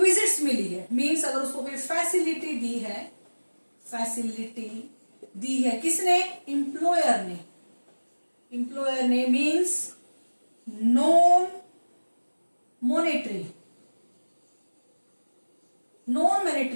मिली है, मींस अगर उसको कोई फैसिलिटी दी है, फैसिलिटी दी है किसने, इंप्लॉयर ने, इंप्लॉयर ने, means non monetary, non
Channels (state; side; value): inverted; both; correlation -1.00